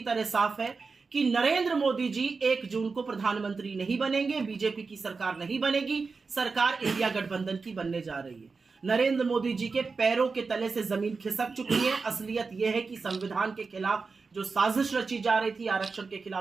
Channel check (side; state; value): left; quieter; 4.5 dB